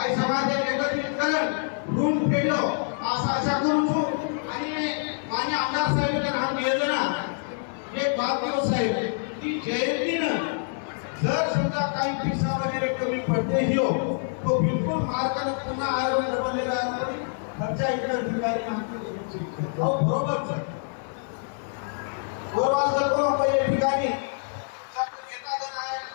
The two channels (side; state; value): right; silent; 56 dB below the other